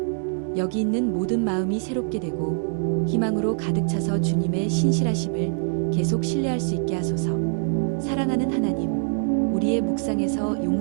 여기 있는 모든 마음이 새롭게 되고 희망으로 가득 차서 주님의 신실하심을 계속 신뢰할 수 있게 하소서. 사랑하는 하나님, 우리의 묵상에서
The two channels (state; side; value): silent; left; 63 dB below the other